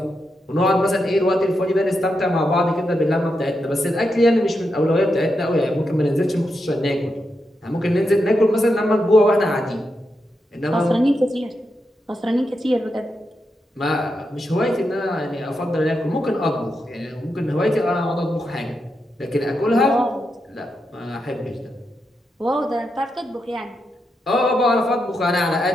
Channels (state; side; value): normal; both; correlation 0.85